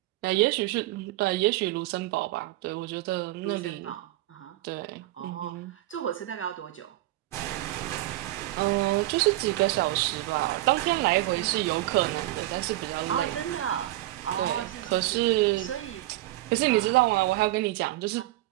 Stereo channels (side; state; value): left; quieter; 16.7 dB